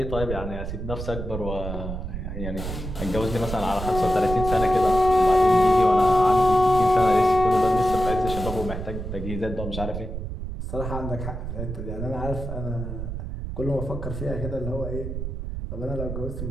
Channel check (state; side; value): noise; right; rumble, 6 dB below the sound